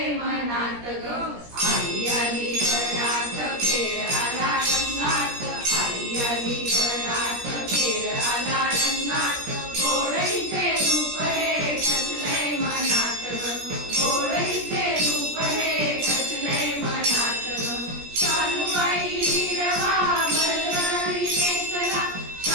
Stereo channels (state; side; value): late; left; 17 ms